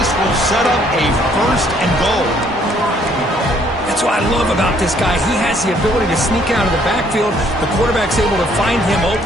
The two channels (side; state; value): both; normal; correlation 0.64